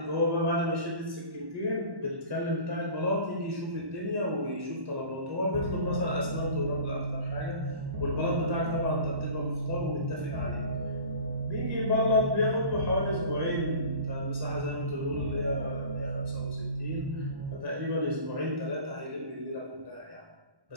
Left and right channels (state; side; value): late; left; 1.1 ms